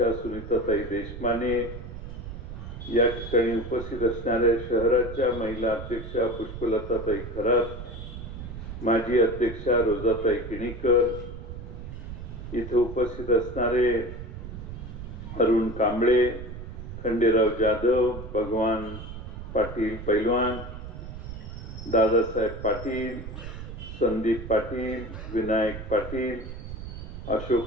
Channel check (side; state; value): right; noise; rumble, 10 dB below the sound